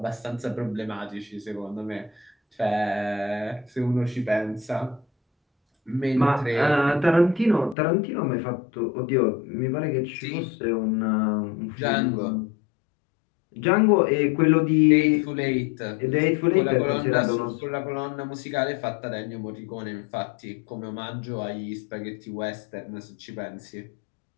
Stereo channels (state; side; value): drops out; right; at 7.8 s